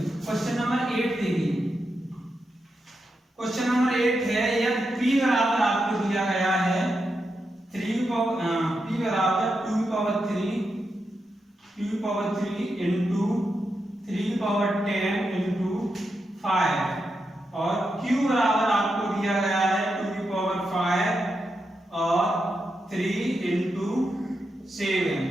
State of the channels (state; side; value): normal; both; correlation 0.86